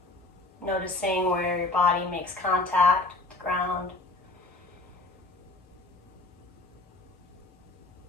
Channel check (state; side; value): quieter; right; 3.1 dB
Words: Noticing where your body makes contact with the ground.